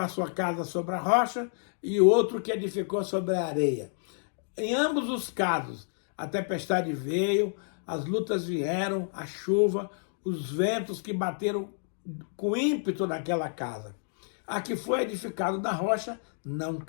sua casa sobre a rocha e outro que edificou sobre a areia. Em ambos os casos, a tempestade veio, as lutas vieram, a chuva, os ventos que bateram com ímpeto naquela casa. A que foi edificada na rocha não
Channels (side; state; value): right; silent; digital silence